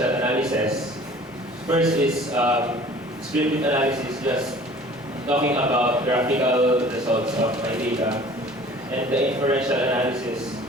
analysis. First is descriptive analysis, just talking about graphical results of my data, and the inferential analysis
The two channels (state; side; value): normal; both; correlation 0.48